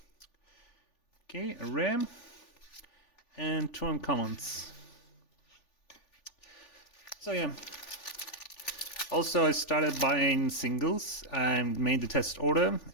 Okay, a rare and 2 uncommons. So yeah. Also, I started buying singles. I made the test order,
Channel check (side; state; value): right; late; 3.4 ms